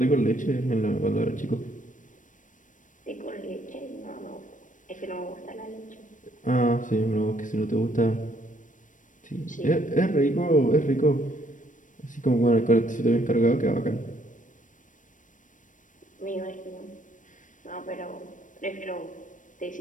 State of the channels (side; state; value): right; late; 0.37 ms